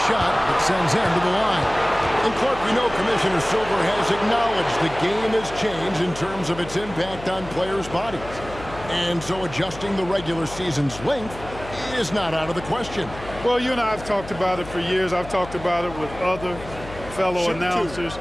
shot that sends him to the line. And Clark, we know Commissioner Silver has acknowledged the game has changed in terms of its impact on players' bodies. And so adjusting the regular season's length is not out of the question. Well, you and I have talked about it for years. I've talked about it with other fellow announcers.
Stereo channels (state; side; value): noise; left; hum, 14 dB below the sound